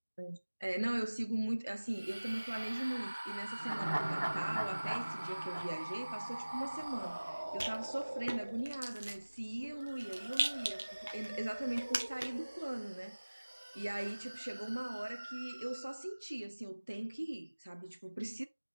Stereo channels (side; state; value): both; inverted; correlation -1.00